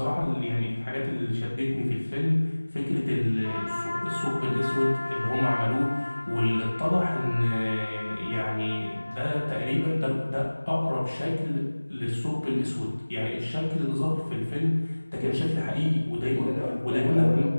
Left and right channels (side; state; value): both; inverted; correlation -1.00